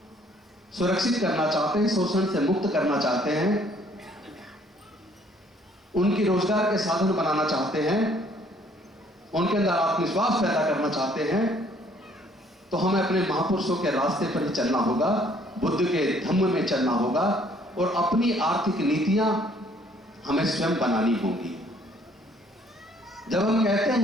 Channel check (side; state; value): both; normal; correlation 0.62